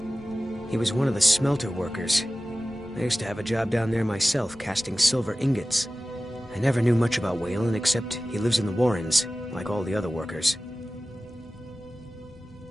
He was one of the smelter workers. I used to have a job down there myself, casting silver ingots. I never knew much about Waylon, except he lives in the Warrens, like all the other workers.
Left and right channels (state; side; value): normal; both; correlation 0.96